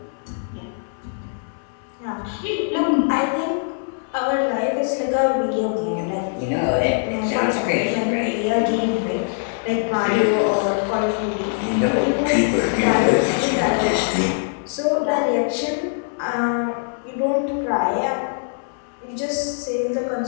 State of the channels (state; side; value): silent; right; 64 dB below the other